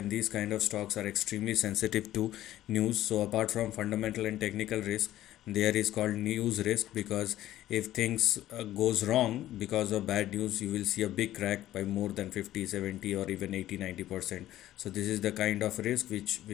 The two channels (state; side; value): quieter; right; 13.8 dB